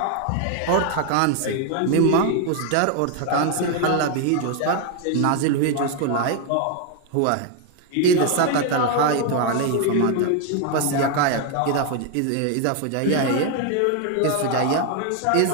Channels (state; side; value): different; both; correlation 0.01